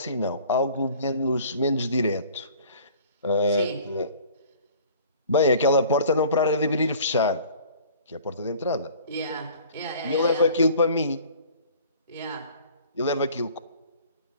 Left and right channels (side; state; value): both; inverted; correlation -0.49